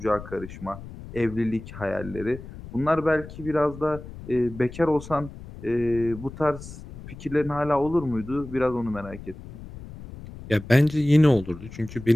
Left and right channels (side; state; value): left; noise; rumble, 14 dB below the sound